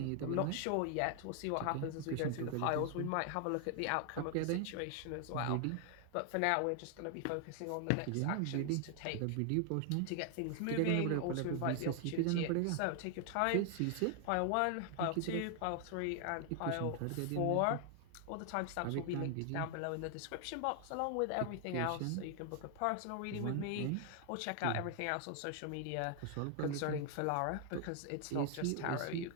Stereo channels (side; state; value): both; different; correlation 0.00